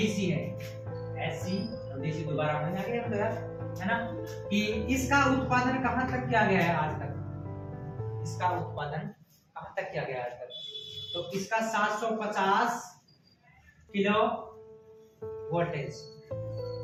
है, एसी और डीसी दोबारा होने लगे हम यार, है ना, कि इसका उत्पादन कहां तक किया गया है आज तक? इसका उत्पादन कहां तक किया गया है आज तक? तो इसका 750 किलो वोल्टेज,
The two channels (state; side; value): identical; both; correlation 1.00